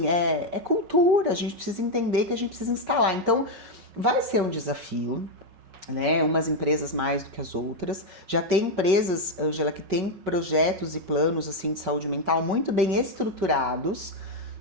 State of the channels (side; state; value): left; late; 5.4 ms